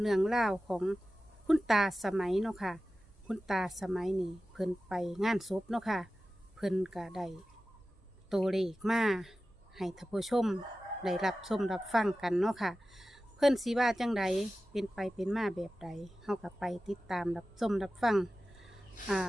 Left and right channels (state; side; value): normal; both; correlation 0.95